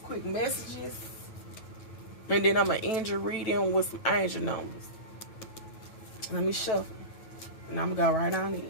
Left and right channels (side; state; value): right; late; 9.1 ms